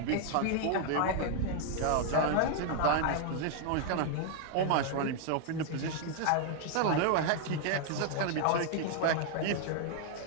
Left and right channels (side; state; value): both; different; correlation 0.00